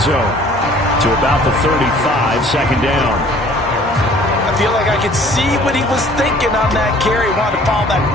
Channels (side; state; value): both; normal; correlation 0.53